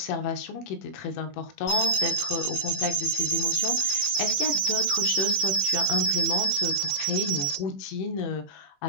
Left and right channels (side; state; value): right; late; 21 ms